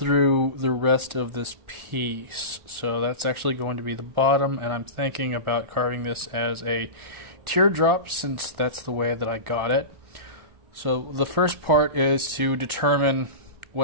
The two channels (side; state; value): left; late; 1.4 ms